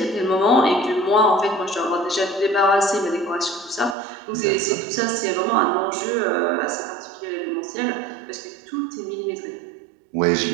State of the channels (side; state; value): left; drops out; at 4.0 s